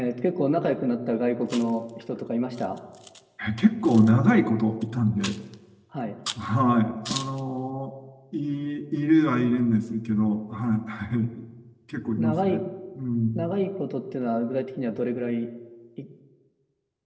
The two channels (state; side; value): identical; both; correlation 1.00